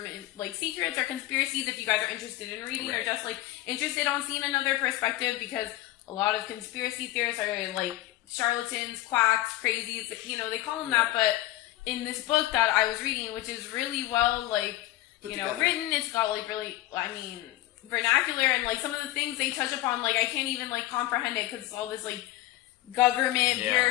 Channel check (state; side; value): quieter; right; 15.9 dB